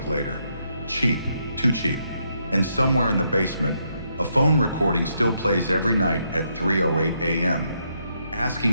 later. Cheap, too cheap. And somewhere in the basement, a phone recording still plays every night at 3:08 a.m.,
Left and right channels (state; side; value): inverted; both; correlation -0.77